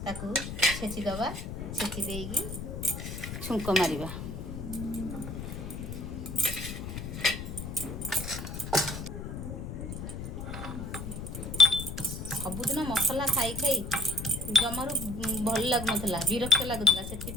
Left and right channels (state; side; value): noise; left; rumble, 7 dB below the sound